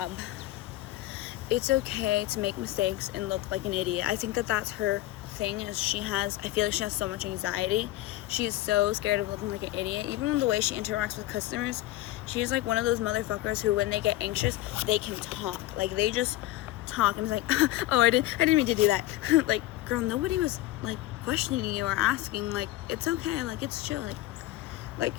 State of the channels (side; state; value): right; quieter; 16.1 dB